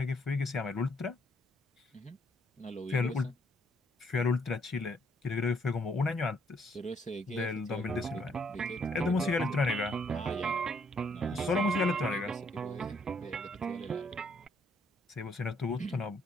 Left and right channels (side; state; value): both; normal; correlation 0.69